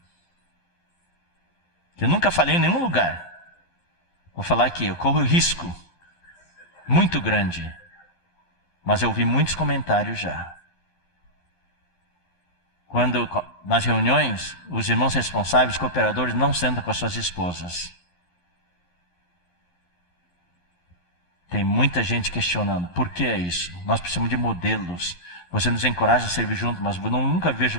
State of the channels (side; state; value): right; late; 11 ms